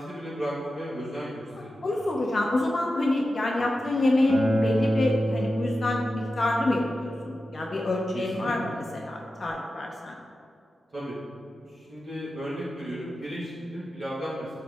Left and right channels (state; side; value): normal; both; correlation 0.92